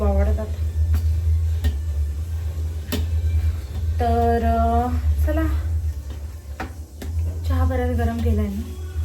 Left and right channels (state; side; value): identical; both; correlation 1.00